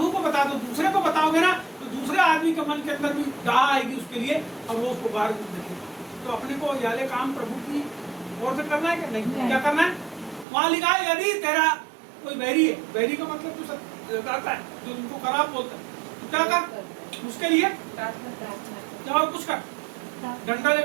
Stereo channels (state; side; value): drops out; left; at 10.5 s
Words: को बता दो। दूसरे को बताओगे ना तो दूसरे आदमी के मन के अंदर भी डाह आएगी उसके लिए और वो उसको बाहर देखेगा। तो अपने को याले काम प्रभु की ओर से करना है कि नहीं? क्या करना है? वहां लिखा है यदि तेरा कोई बैरी है, बैरी का मतलब तो करता है जो उनको खराब बोलता है, तो क्या कर उसके लिए क्या कुछ कर, डंडा